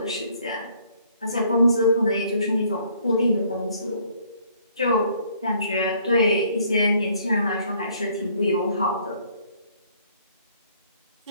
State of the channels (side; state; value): both; inverted; correlation -0.63